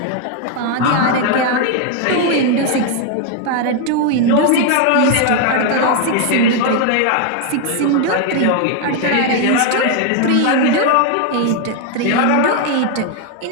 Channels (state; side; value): different; both; correlation 0.01